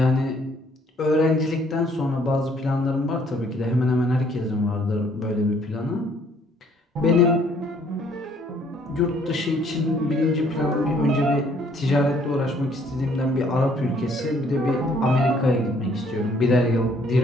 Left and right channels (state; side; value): normal; both; correlation 0.63